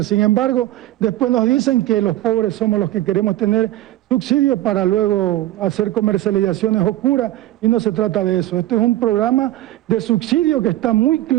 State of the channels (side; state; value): left; quieter; 14.9 dB